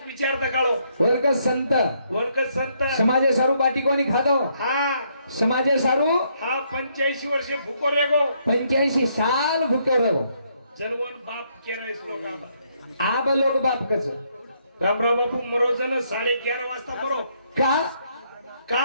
विचार दा काळो वर्ग संत वर्ग संत समाजे सारू बाटी कोणी खातो हा समाजे सारू हा 85 वर्षे भूको रेगो 85 साल भूके रहो जनवन बाप केरायस लोक आबा आब लोक बाप कच रामराव बापू मरोजन 11:30 वाजता मरो का का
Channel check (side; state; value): both; inverted; correlation -0.72